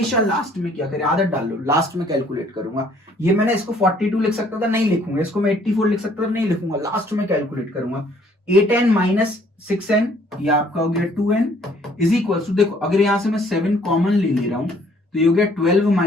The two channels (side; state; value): both; normal; correlation 0.61